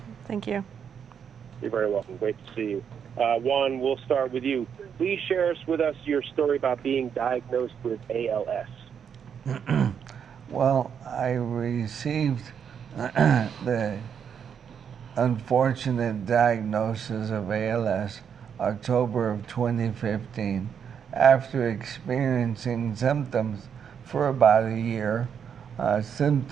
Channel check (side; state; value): left; quieter; 7.6 dB